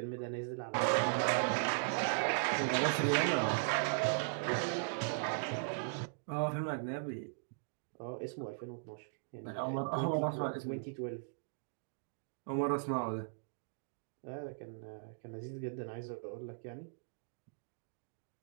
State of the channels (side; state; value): left; silent; digital silence